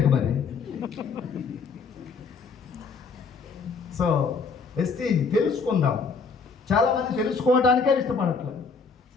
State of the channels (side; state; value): right; quieter; 5.0 dB